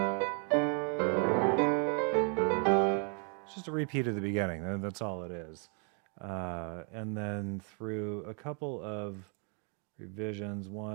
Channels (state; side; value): quieter; left; 39.6 dB